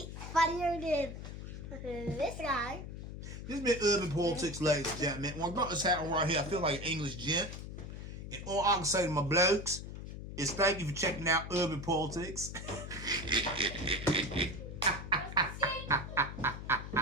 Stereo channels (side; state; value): left; noise; hum, 9 dB below the sound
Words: than this guy. This has been Urban Politics, ladies and gentlemen. When I got this hat on right here, I feel like an English gent. And all I can say to my blokes is thank you for checking out Urban Politics.